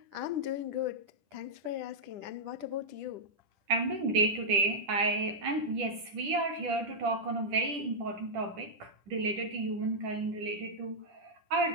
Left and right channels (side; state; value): left; late; 10 ms